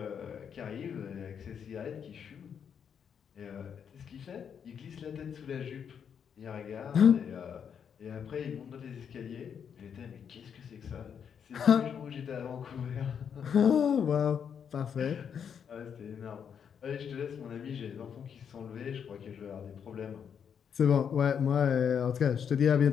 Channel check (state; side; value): quieter; right; 7.6 dB